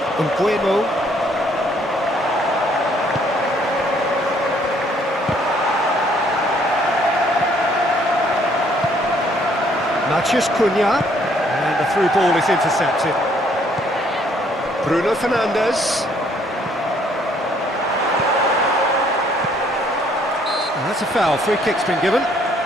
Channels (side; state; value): both; normal; correlation 0.64